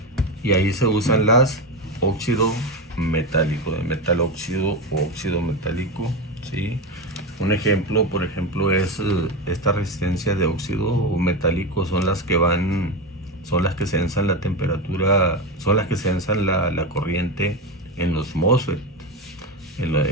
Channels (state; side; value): normal; both; correlation 0.17